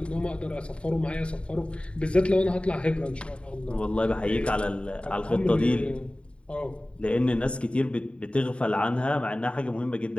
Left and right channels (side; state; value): right; late; 0.058 ms